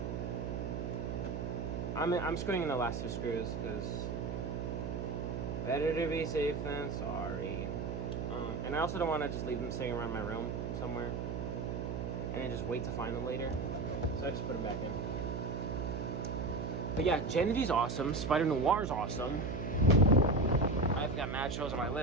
I'm screwing in the last 2 screws because better to be safe than sorry. And I also don't want to just leave them sitting around my room somewhere and then just wait to find them later. So I just put them back in. But yeah, Gen V's awesome. Spider Noir's awesome. I've got mad shows on my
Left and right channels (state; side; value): noise; right; hum, 3 dB below the sound